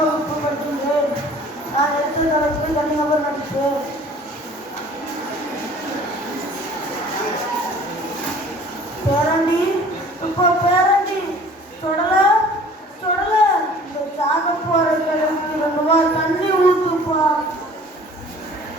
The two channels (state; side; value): normal; both; correlation 0.49